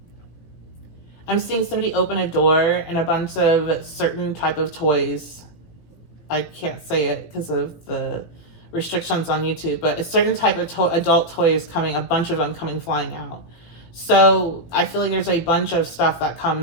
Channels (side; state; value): right; late; 18 ms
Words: seeing somebody open a door and a bunch of certain type of toys. I can't say it because of the restrictions on YouTube, but a certain type of adult toy is coming, a bunch of them coming flying out. So I feel like there's a bunch of stuff that